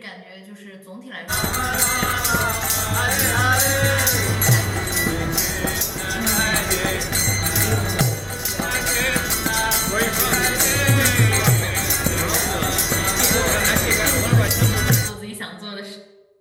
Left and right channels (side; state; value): both; identical; correlation 1.00